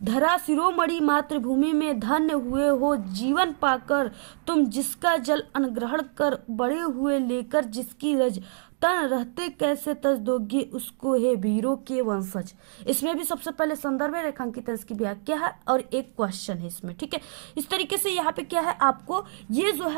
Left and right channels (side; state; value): left; silent; digital silence